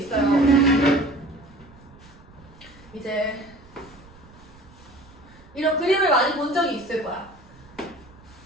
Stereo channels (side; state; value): right; noise; rumble, 24 dB below the sound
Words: 이제 이런 그림을 많이 본 적이 있을 거야.